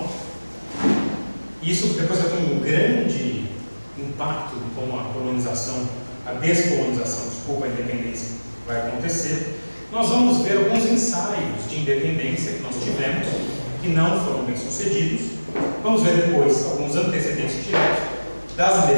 Isso depois vai ter um grande impacto em como a colonização, a descolonização, desculpa, a independência vai acontecer. Nós vamos ver alguns ensaios de independência que nós tivemos, que não foram bem sucedidos. Vamos ver depois alguns antecedentes diretos das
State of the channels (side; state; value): both; inverted; correlation -1.00